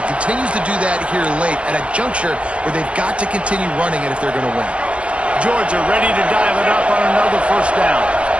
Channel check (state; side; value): late; left; 0.061 ms